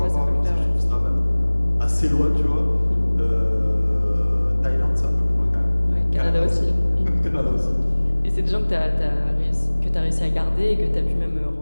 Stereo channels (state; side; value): inverted; both; correlation -1.00